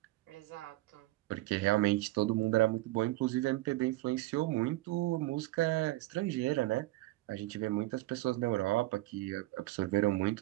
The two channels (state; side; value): quieter; left; 18.6 dB